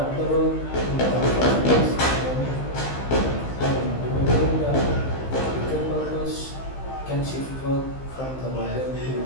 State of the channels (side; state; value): right; late; 15 ms